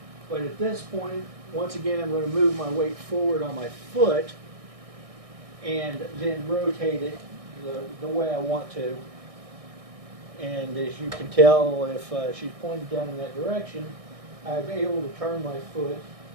but at this point, once again, I'm going to move my weight forward on my foot and then rotate it the way I want to. And as you can tell, if she's pointed down in that direction, I'm able to turn my foot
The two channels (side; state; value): left; late; 1.6 ms